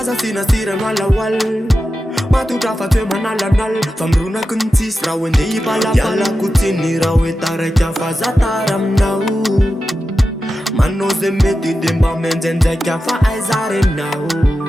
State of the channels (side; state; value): both; normal; correlation 0.92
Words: sinasirana lawal matutra fa toe manalanal fa mirona ko ny tsisy raha hoe ndeha ipalapalako tsiny raha hoe taraiky fa za tara aminao manao zay mety de mba menjenjaika fa aiza reninao